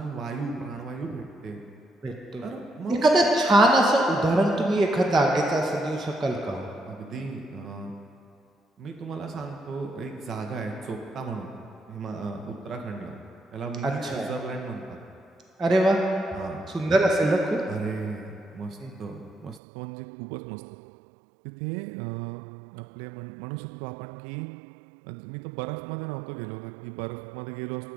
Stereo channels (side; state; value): left; drops out; at 19.6 s